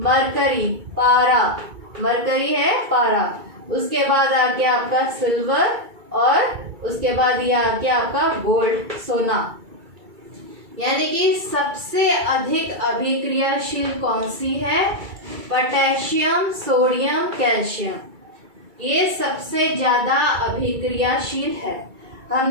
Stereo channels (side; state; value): left; late; 2.3 ms